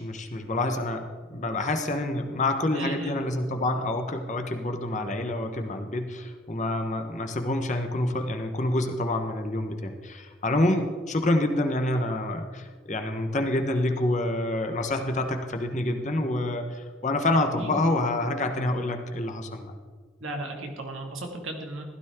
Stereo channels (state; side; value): normal; both; correlation 0.55